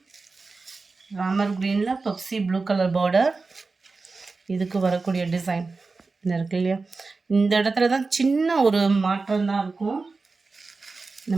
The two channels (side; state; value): left; quieter; 4.0 dB